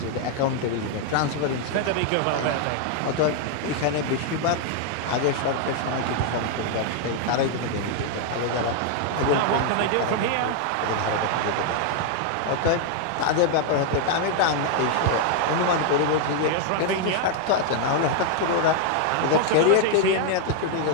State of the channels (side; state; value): both; different; correlation 0.00